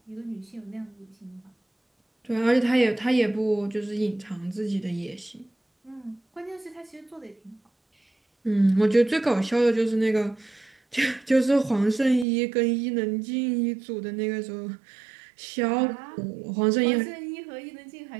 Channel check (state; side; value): drops out; left; at 12.2 s